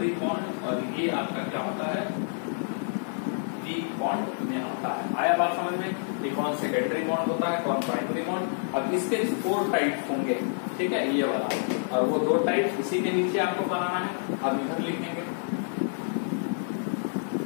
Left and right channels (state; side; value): silent; right; digital silence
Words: बॉन्ड। और ये आपका क्या होता है, वीक बॉन्ड में आता है। आया बात समझ में, ये कौन सेकेंडरी बॉन्ड होता है, कौन प्राइमरी बॉन्ड। अब इसके 4 टाइप होंगे, ठीक है, ये वाला, और वो 2 टाइप इसी के नीचे आपको बनाना है, अब इधर लिखेंगे।